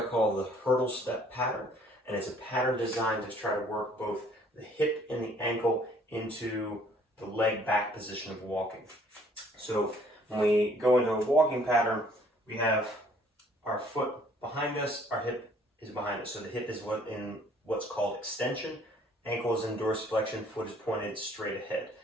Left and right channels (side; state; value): both; normal; correlation 0.59